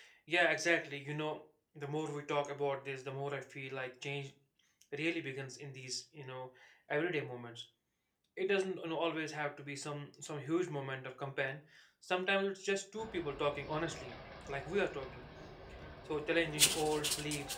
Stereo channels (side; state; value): both; identical; correlation 1.00